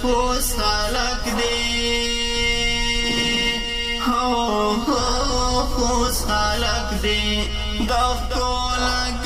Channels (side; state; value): both; identical; correlation 1.00